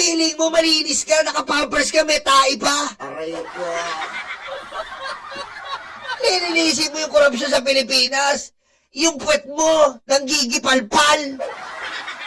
mo malinis ka, naka-pampers ka, may tae pa! Aray ko. Lilinisin mo yung korupsyon sa Pilipinas! Yung puwet mo, nanggigipalpal!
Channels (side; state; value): both; identical; correlation 1.00